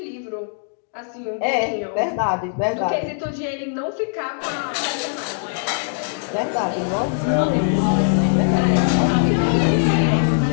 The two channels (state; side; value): silent; right; digital silence